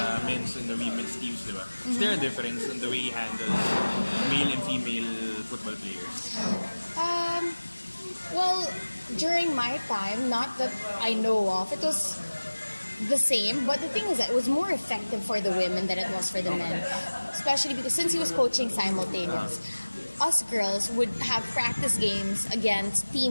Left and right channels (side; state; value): both; inverted; correlation -1.00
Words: men's and the women's teams, di ba? Is there a difference in the way he handles male and female football players? Well, during my time, not that I know of, it was the same, but the thing is that it was more effective for the women than it was for the men, especially because since he was coaching simultaneous, us girls would have practice games against